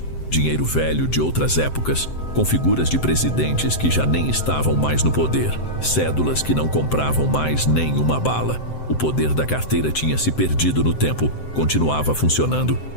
dinheiro velho de outras épocas, com figuras de presidentes que já nem estavam mais no poder, cédulas que não compravam mais nem uma bala. O poder da carteira tinha se perdido no tempo, continuava funcionando,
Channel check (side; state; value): right; late; 7.8 ms